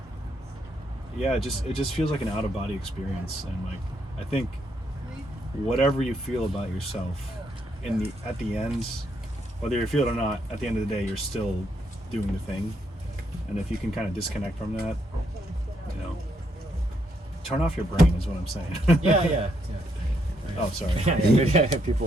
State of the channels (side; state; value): both; normal; correlation 0.76